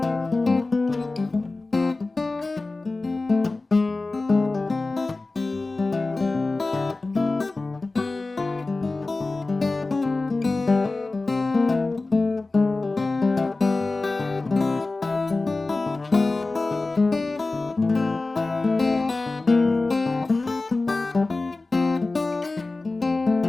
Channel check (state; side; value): quieter; right; 3.3 dB